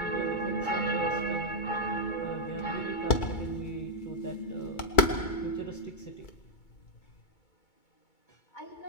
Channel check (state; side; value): late; right; 2.3 ms